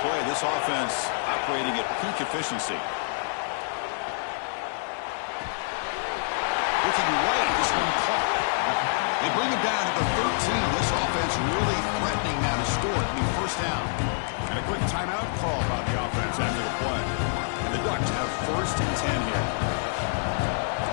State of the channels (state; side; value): silent; right; digital silence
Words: play. This offense operating at peak efficiency. Looking right, this one caught. They bring him down at the 13. This offense really threatening now to score. It'll be first down. And a quick timeout call by the offense after the play. And the Ducks have 1st and 10 here.